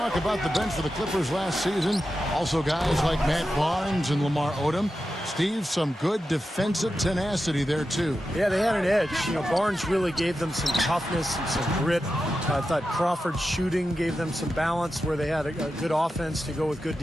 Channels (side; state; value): both; normal; correlation 0.91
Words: about the bench for the Clippers last season. Also guys like Matt Barnes and Lamar Odom. Steve, some good defensive tenacity there too. Yeah, they had an edge. You know, Barnes really gave them some toughness and some grit. I thought Crawford's shooting gave them some balance where they had a good offense to go with good